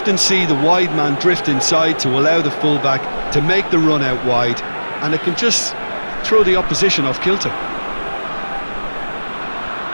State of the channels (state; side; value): inverted; both; correlation -1.00